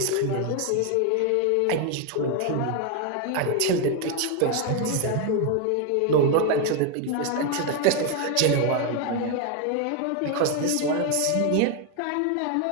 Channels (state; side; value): different; both; correlation 0.01